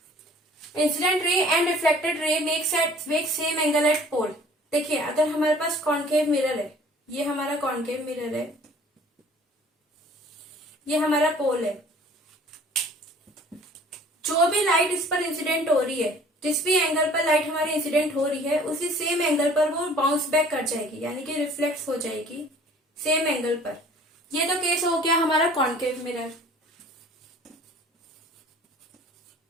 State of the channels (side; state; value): both; normal; correlation 0.51